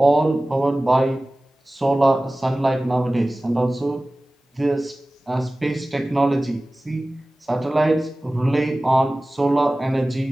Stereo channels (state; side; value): normal; both; correlation 0.97